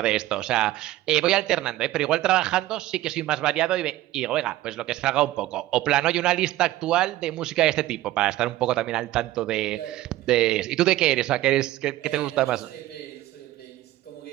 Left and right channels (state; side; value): quieter; left; 15.6 dB